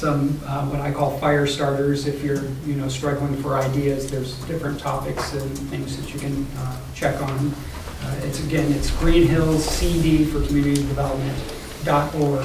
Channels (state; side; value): identical; both; correlation 1.00